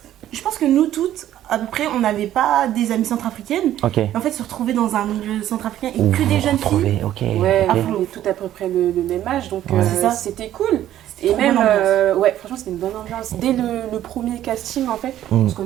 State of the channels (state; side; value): quieter; left; 12.4 dB